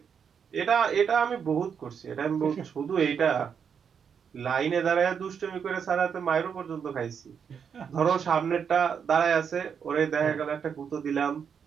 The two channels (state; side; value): quieter; left; 7.1 dB